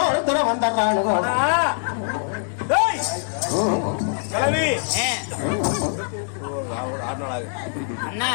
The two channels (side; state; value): right; silent; digital silence